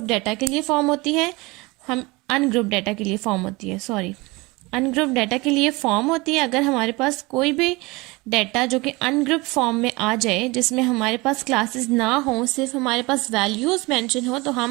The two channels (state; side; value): quieter; left; 23.9 dB